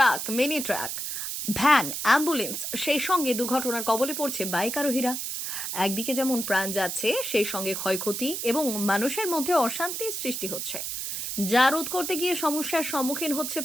mini truck, van, ambulance, সেই সঙ্গে দুর্ঘটনার কবলে পড়ছে বাইক আরোহীরা। একদিকে যেমন প্রাণ যাচ্ছে, সেই সঙ্গে ক্ষয়ক্ষতি এবং মানুষের মধ্যে অশান্তির সৃষ্টি হচ্ছে, যা রোধ করতে গিয়ে সমস্যার সম্মুখীন হচ্ছে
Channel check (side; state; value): right; noise; hiss, 4 dB below the sound